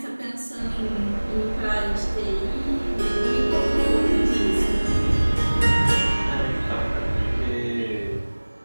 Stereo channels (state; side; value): inverted; both; correlation -1.00